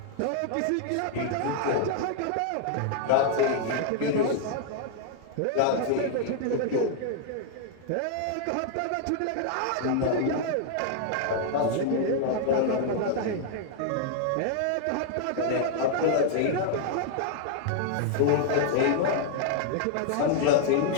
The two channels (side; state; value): both; different; correlation -0.01